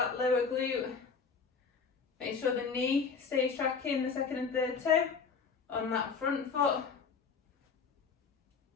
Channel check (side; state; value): right; quieter; 5.5 dB